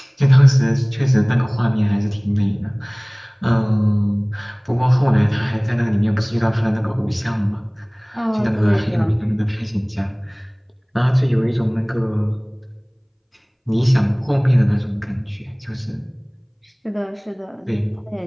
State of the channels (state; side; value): identical; both; correlation 1.00